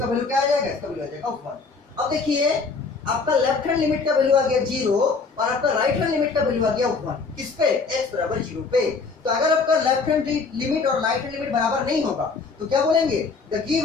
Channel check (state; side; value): quieter; right; 4.5 dB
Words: वैल्यू क्या आ जाएगा, इसका वैल्यू आ जाएगा 1। अब देखिए आपका लेफ्ट हैंड लिमिट का वैल्यू आ गया 0, और आपका राइट हैंड लिमिट का वैल्यू आ गया 1। किस पे, x बराबर 0 पे। तो अगर आपका लेफ्ट हैंड लिमिट और राइट हैंड लिमिट बराबर नहीं होगा तो क्या बोलेंगे, the